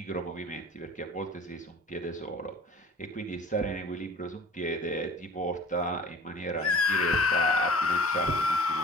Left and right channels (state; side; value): normal; both; correlation 0.46